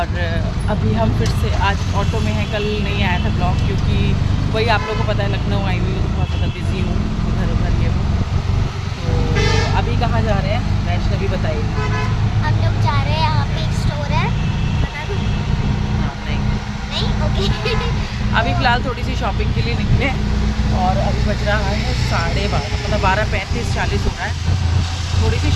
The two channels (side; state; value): both; identical; correlation 1.00